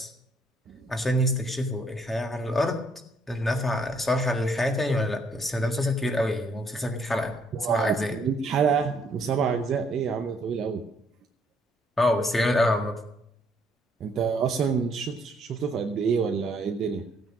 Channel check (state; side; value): normal; both; correlation 0.67